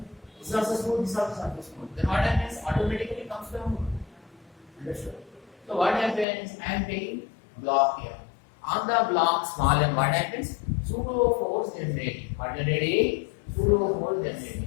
This is also smooth, this is also smooth. Then what happens? Automatically comes down. Understood? So what happens? I am taking block here. On the block small m, what happens? Pseudo force generating. What generating? Pseudo force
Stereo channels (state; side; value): drops out; right; at 6.2 s